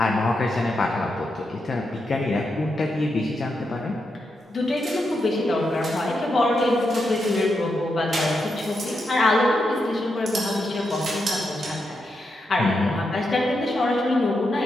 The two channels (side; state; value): both; normal; correlation 0.84